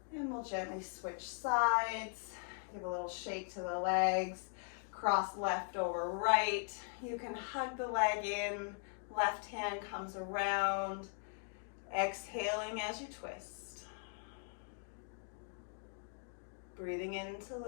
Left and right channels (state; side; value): silent; right; 51 dB below the other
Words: And we'll gently switch sides, give a little shake to the legs, cross left over right. You can hug the leg in, left hand comes around, exhaling as you twist. Breathing in to